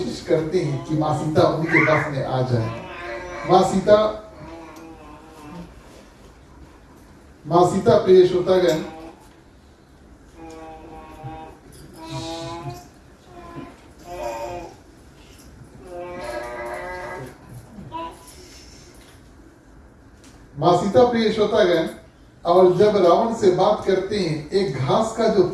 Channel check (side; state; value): both; identical; correlation 1.00